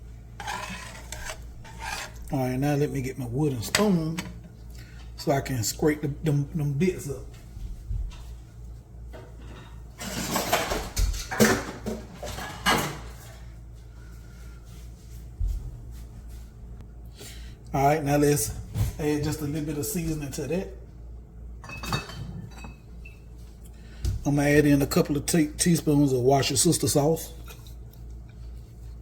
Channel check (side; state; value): both; identical; correlation 1.00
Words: All right, now let me get my wooden spoon so I can scrape them bits up. All right, now let's add just a little bit of seasoning to that. I'm gonna add in a couple of teaspoons of wash your sister sauce.